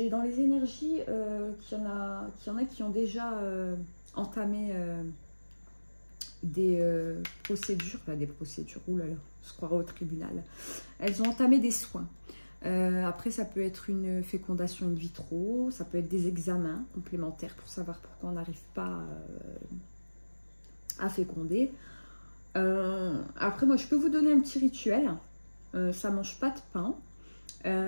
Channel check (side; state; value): both; inverted; correlation -1.00